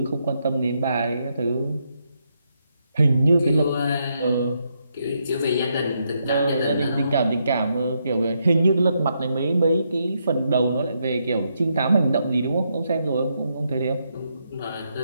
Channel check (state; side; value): inverted; both; correlation -0.79